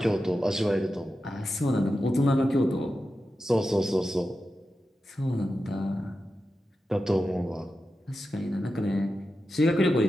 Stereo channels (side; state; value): both; normal; correlation 0.91